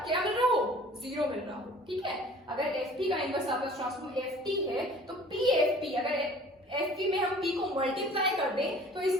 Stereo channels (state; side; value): normal; both; correlation 0.49